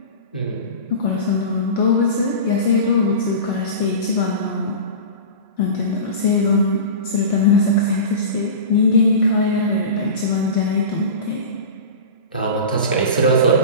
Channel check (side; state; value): both; inverted; correlation -0.31